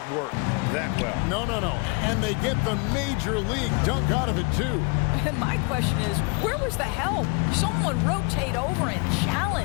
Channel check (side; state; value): right; quieter; 30.7 dB